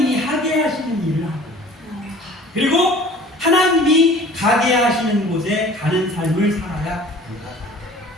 하게 하시는 일을 하고 그리고 하나님이 가게 하시는 곳에 가는 삶을 살아야 합니다.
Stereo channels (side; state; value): both; normal; correlation 0.47